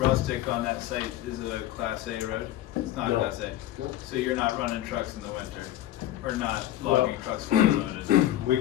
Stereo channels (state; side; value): quieter; right; 13.4 dB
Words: on that site is a Class A road? It's not No. Class A? No. So you're not running trucks in the winter? Or not logging trucks fully loaded? We